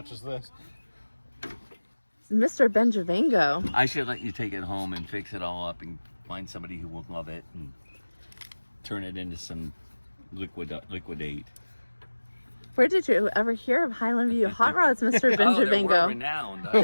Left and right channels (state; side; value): inverted; both; correlation -1.00